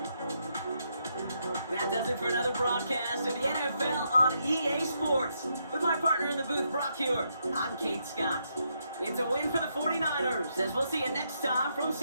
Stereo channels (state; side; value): inverted; both; correlation -0.78